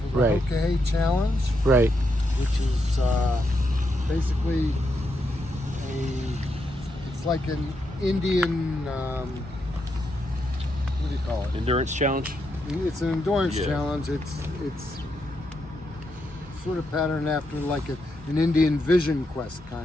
for the Right. Hoka He Challenge, Right. which is basically it's like an Indian, what do you call it? Endurance challenge. It's an endurance Yeah. challenge. It's sort of patterned after like an Indian vision quest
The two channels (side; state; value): both; normal; correlation 0.82